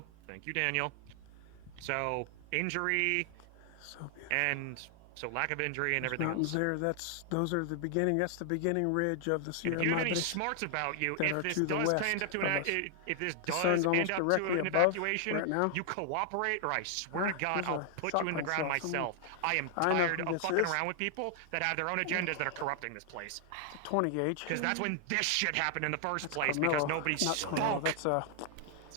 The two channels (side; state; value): both; different; correlation 0.00